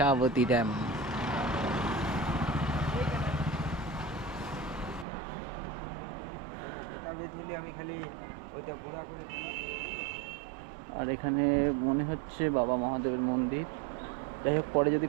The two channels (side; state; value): left; drops out; at 5.1 s